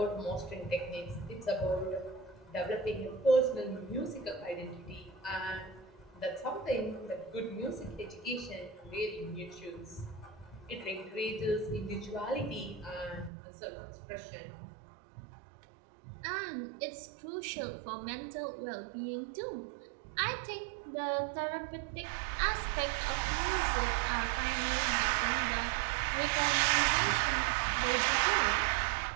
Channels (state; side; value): drops out; left; at 13.3 s